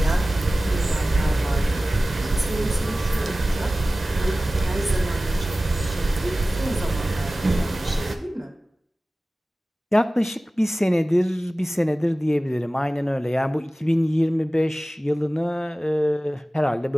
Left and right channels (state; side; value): normal; both; correlation 0.97